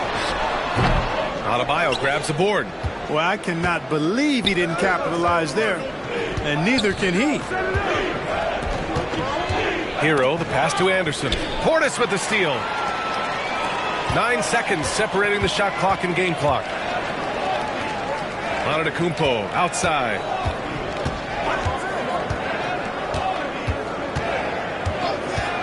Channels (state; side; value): identical; both; correlation 1.00